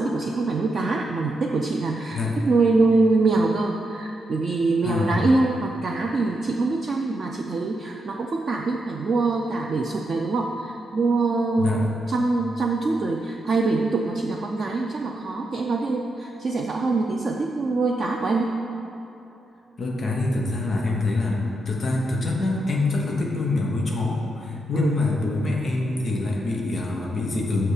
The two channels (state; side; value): normal; both; correlation 0.83